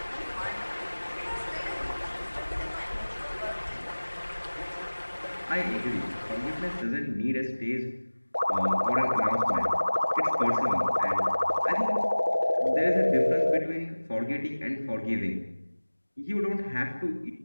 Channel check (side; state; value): both; inverted; correlation -1.00